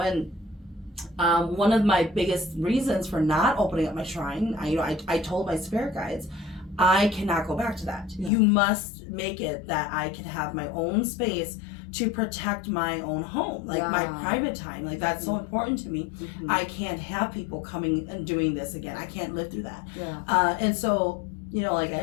and one of my biggest reasons for not opening up my shrine, I told my spirit guides, I cannot go back to that. You must make it that I can have my own space to protect my own home, like my private time. Like that's so important to me. I can't have people coming and doing this again. I can't live through that. And so, you know, like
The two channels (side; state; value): right; drops out; at 8.3 s